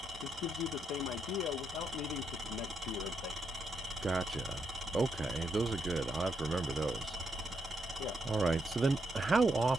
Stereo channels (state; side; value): normal; both; correlation 0.79